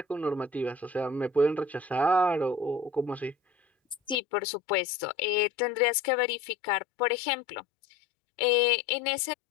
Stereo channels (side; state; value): right; drops out; at 4.2 s